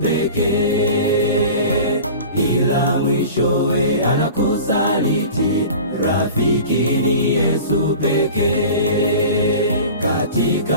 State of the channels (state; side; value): inverted; both; correlation -0.38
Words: pekee, ila mwishowe anakusaliti. Rafiki ni Yesu pekee.